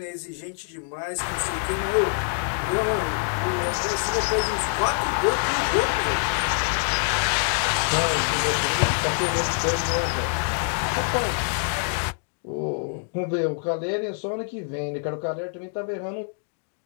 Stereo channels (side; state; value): right; silent; digital silence